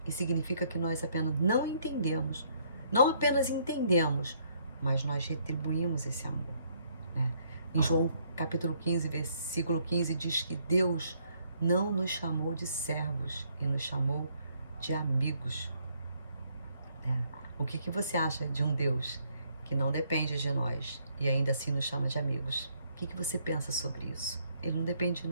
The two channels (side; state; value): both; inverted; correlation -0.68